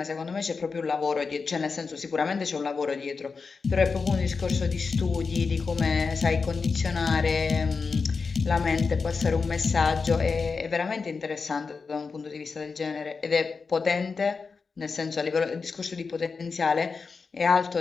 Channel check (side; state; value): right; quieter; 4.8 dB